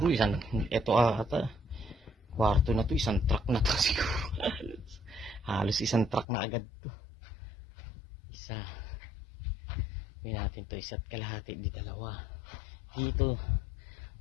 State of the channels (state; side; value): drops out; right; at 6.2 s